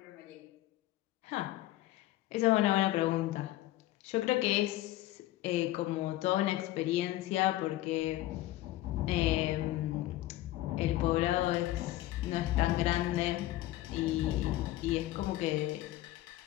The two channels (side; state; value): right; quieter; 15.5 dB